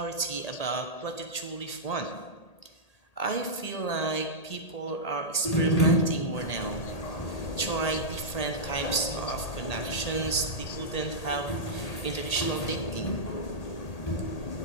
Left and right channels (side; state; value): right; late; 1.8 ms